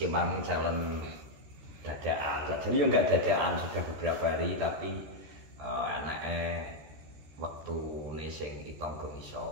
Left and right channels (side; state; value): left; late; 14 ms